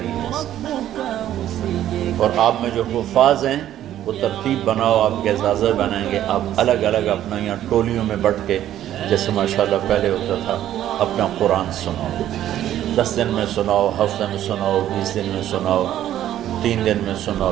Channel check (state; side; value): quieter; left; 12.0 dB